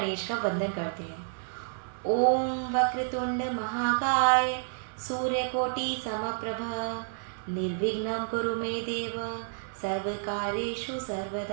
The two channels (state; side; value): silent; left; digital silence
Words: का वंदन करते हैं। ओम वक्रतुंड महाकाय सूर्यकोटि समप्रभ निर्विघ्नं कुरु मे देव सर्वकार्येषु